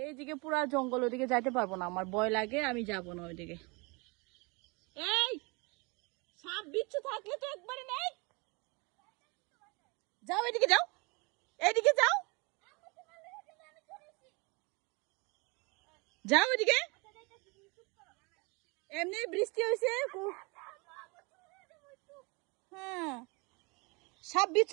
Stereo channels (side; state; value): left; quieter; 28.8 dB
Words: এইদিকে পুরা জঙ্গল, ওইদিকে যাইতে পারবো না, আমার ভয় লাগে, আমি যাব না ওইদিকে। এই সাপ বিচ্ছু থাকলে তো একবারে নেই, যাও এদিকে যাও, এইদিকে যাও, যাও এদিকে। এমনি বৃষ্টি হয়েছে। হ্যাঁ, সাপ